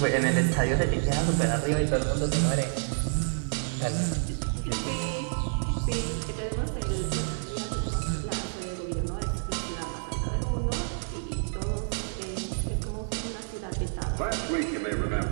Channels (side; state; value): left; silent; 59 dB below the other